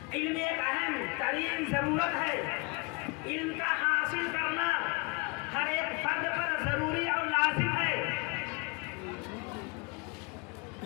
علم ایک اہم ترین ضرورت ہے۔ علم کا حاصل کرنا ہر ایک فرد پر ضروری اور لازم ہے۔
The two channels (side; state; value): right; quieter; 29.1 dB